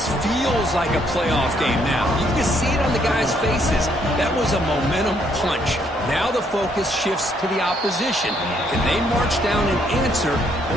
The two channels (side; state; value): both; normal; correlation 0.70